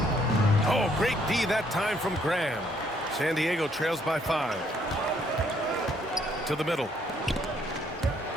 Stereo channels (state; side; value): normal; both; correlation 0.67